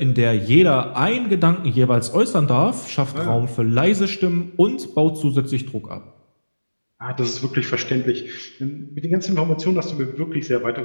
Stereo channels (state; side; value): inverted; both; correlation -1.00